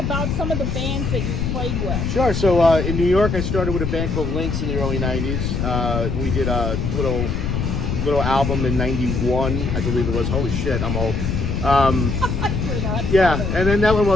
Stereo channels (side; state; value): left; noise; rumble, 1 dB below the sound